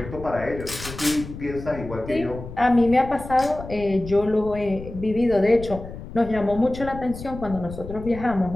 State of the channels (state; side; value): noise; left; rumble, 12 dB below the sound